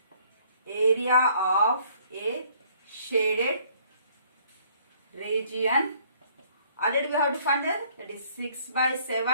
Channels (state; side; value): inverted; both; correlation -0.61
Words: area of a shaded region. Already we have to find that is 6 by